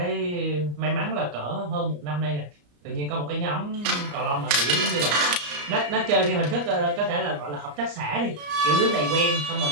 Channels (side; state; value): left; late; 34 ms